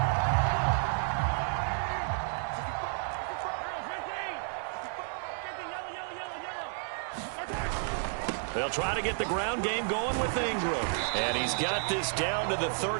They'll try to get the ground game going with Ingram. And he's got this down to the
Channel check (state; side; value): silent; left; 57 dB below the other